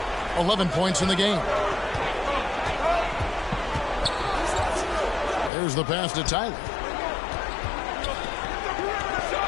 11 points in the game. There's the pass to Tyler.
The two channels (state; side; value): drops out; right; at 5.5 s